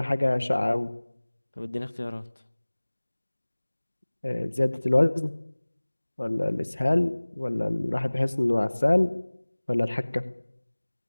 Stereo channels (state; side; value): inverted; both; correlation -1.00